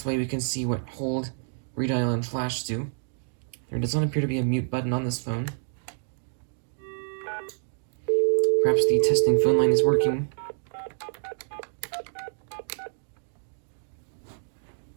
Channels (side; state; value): left; silent; 60 dB below the other